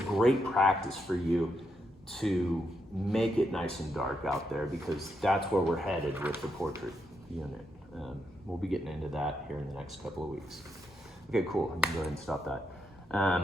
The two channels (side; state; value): both; normal; correlation 0.81